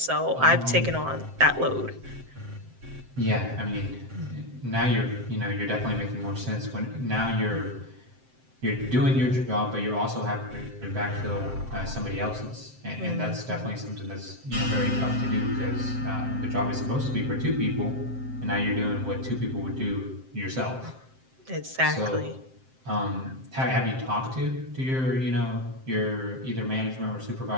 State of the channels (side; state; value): left; late; 7.7 ms